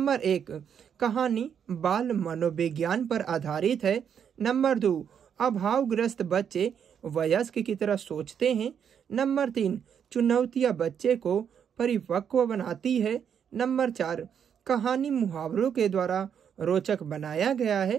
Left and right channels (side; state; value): left; quieter; 8.0 dB